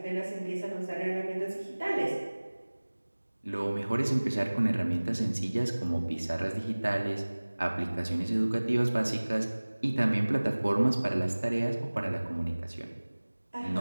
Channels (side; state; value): both; inverted; correlation -1.00